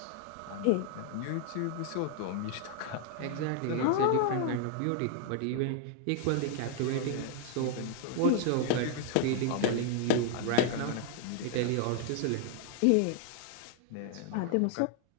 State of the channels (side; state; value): both; different; correlation 0.00